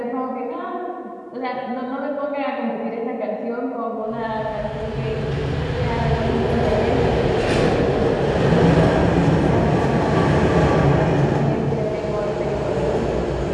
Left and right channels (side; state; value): both; identical; correlation 1.00